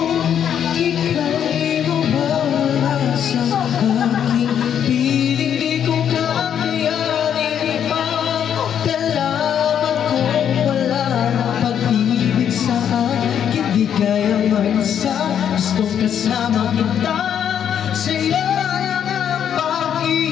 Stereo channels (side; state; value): right; quieter; 8.9 dB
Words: ika'y mawawala sa aking piling. Di ko kakayanin magdalaman kung wala ng pag-ibig sa akin. Di kaya mag-isa, gustong kasama kita sa'yo.